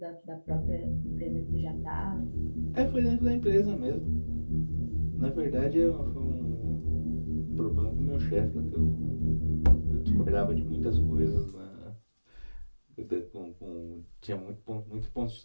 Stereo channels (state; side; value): inverted; both; correlation -1.00